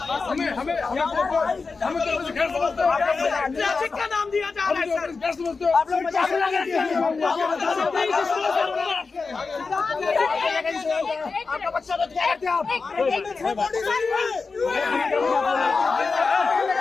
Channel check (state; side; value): quieter; right; 4.4 dB